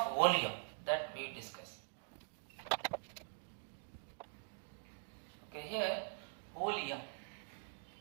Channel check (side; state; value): left; silent; digital silence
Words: volume that we discuss. Okay, here volume.